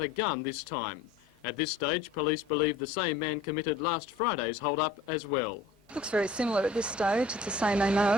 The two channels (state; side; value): quieter; right; 3.4 dB